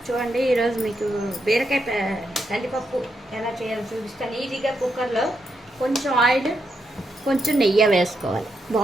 చూడండి, ఈరోజు మీకు బీరకాయ కందిపప్పు ఎలా చేయాలో చూపిస్తాను. ఈజీగా కుక్కర్లో కొంచెం ఆయిల్, కొంచెం నెయ్యి వేసుకోవాలి.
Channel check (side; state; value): both; normal; correlation 0.82